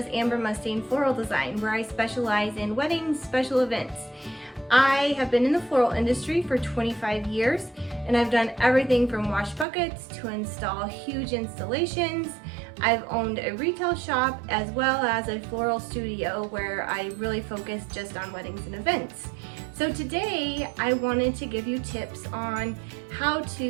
Amber Mustain Floral Design, where I specialize in weddings, special events. I have been in the floral industry for 25 years and I've done everything from wash buckets to install huge installations. I've owned a retail shop as well as a floral studio where I really focus just on weddings and events. So today I wanted to give you tips on how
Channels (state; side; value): drops out; left; at 9.7 s